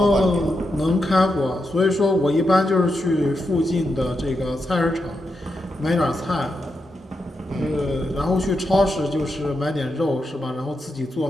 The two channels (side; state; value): both; normal; correlation 0.85